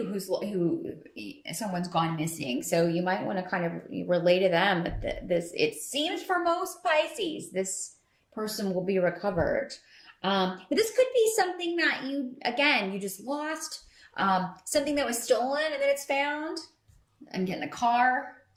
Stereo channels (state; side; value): identical; both; correlation 1.00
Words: who someone's gone missing. So you might want to kind of relay to them that this, it seems for most Pisces, this person will be recovered. But this could be something that you just lost, something that was stolen and then it's found. I'm getting a car.